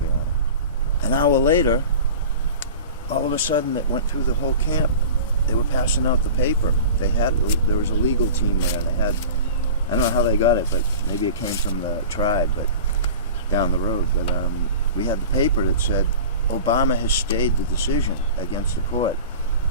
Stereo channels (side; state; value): both; inverted; correlation -0.36